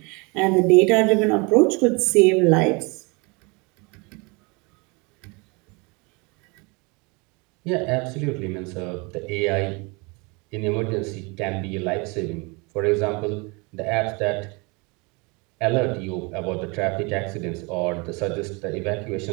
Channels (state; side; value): quieter; left; 29.0 dB